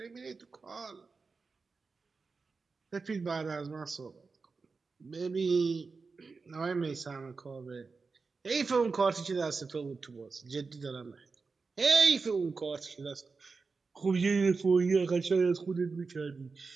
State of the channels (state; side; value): quieter; left; 4.5 dB